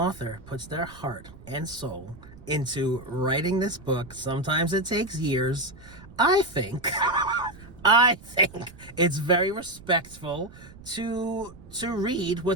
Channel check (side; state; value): right; noise; rumble, 19 dB below the sound